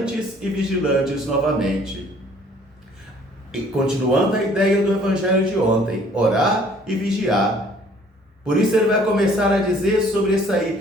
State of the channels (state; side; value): normal; both; correlation 0.57